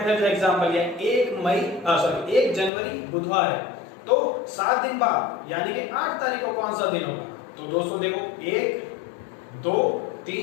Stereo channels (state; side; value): drops out; right; at 2.7 s